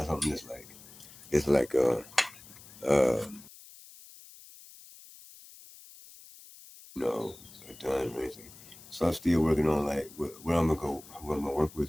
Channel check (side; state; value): left; noise; hiss, 19 dB below the sound